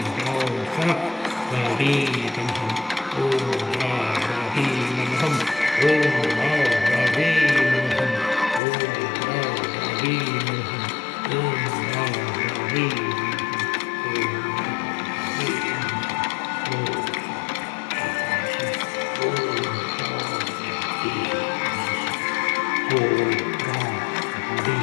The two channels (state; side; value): drops out; right; at 8.6 s